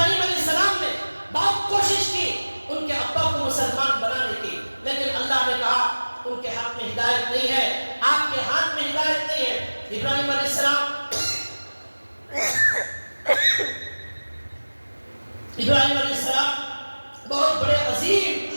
علیہ السلام نے بہت کوشش کی ان کے ابا کو مسلمان بنانے کی، لیکن اللہ نے کہا ان کے ہاتھ میں ہدایت نہیں ہے، آپ کے ہاتھ میں ہدایت نہیں ہے۔ ابراہیم علیہ السلام ابراہیم علیہ السلام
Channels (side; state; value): both; inverted; correlation -1.00